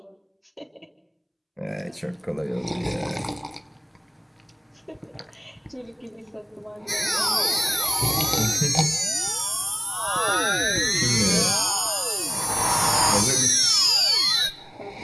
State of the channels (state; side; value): identical; both; correlation 1.00